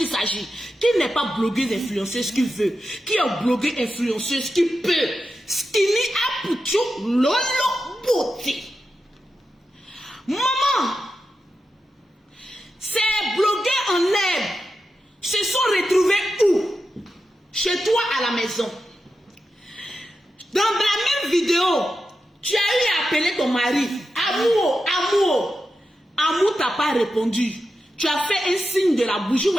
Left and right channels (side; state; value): both; normal; correlation 0.89